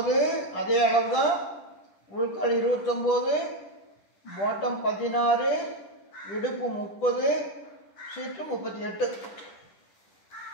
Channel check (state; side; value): late; right; 10 ms